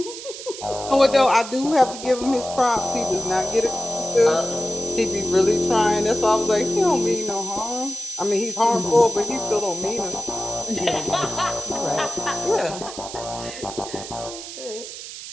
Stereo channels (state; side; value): noise; right; hiss, 11 dB below the sound